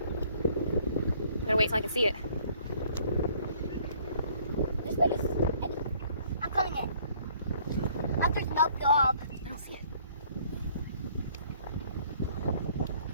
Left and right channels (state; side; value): inverted; both; correlation -0.60